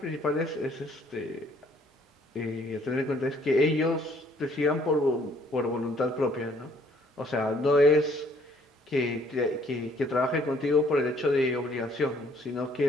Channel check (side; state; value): both; normal; correlation 0.63